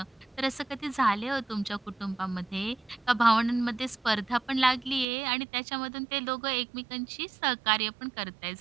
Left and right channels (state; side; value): drops out; left; at 5.1 s